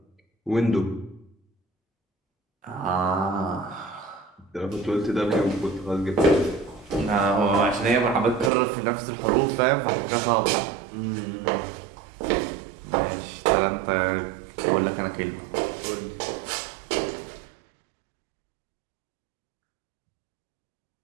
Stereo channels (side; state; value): left; drops out; at 8.5 s